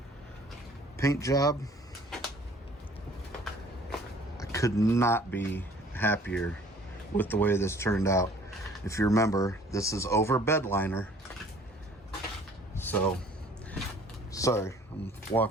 paint job. I could not be happier with the way this turned out. If you remember, this is over bed liner. So, sorry, I'm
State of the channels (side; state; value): both; normal; correlation 0.54